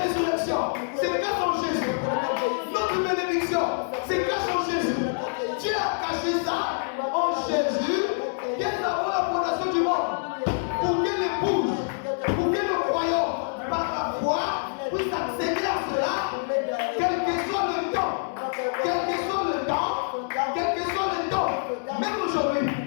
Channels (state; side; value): silent; right; 59 dB below the other